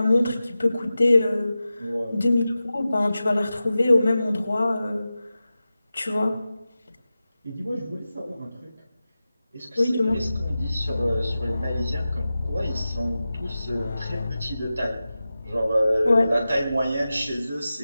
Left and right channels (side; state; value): both; inverted; correlation -0.94